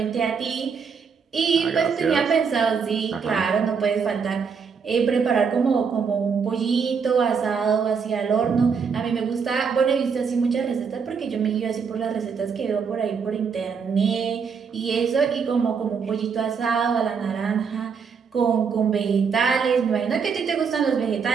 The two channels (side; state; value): left; quieter; 6.0 dB